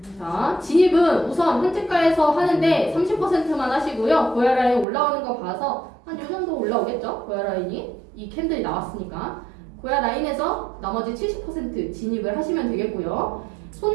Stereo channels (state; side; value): drops out; left; at 4.9 s